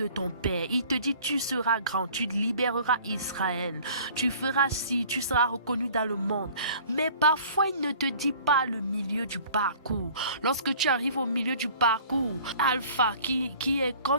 ton père. Il te dit, tu seras grand. Tu libéreras Israël. Tu feras ci. Tu seras reconnu dans le monde. Mais parfois, il ne te dit pas le milieu du parcours. Lorsque tu arrives au milieu du parcours, Alpha, qui est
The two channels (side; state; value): both; inverted; correlation -0.49